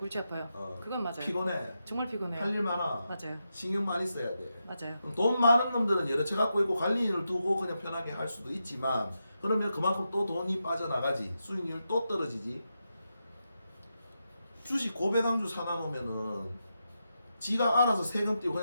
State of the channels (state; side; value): inverted; both; correlation -0.87